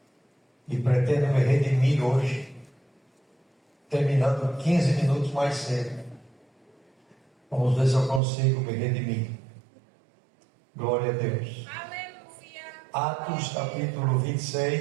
e pretendo me redimir hoje, terminando 15 minutos mais cedo. Vamos ver se eu consigo me redimir. Glória a Deus. Atos capítulo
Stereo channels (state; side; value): drops out; left; at 8.2 s